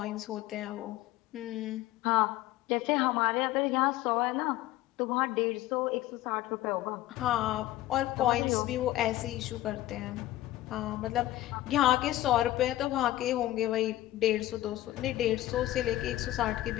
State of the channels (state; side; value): quieter; right; 15.4 dB